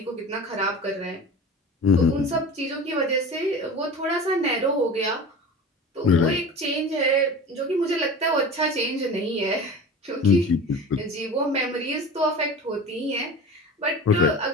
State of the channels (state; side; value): normal; both; correlation 0.34